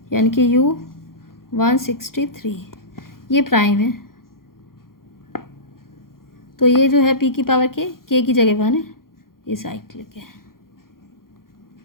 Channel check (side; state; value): right; late; 0.92 ms